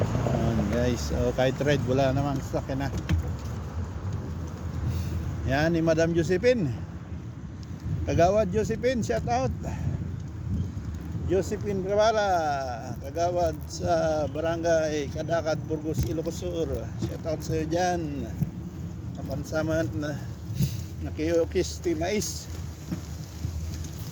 Yun guys, kahit red, wala namang sakin na. Yan ni Madam Josephine. Kagawad Josephine, shout out. Josephine Guevara, kagawad sa Barangay Kadakat, Burgos, Ilocos Sur. Shout out sa iyo dyan. Kapansaman na nakiyokis Team Ace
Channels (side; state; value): both; identical; correlation 1.00